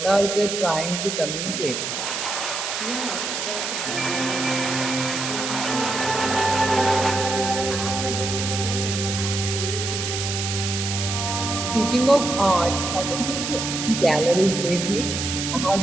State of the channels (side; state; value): right; noise; hiss, 3 dB below the sound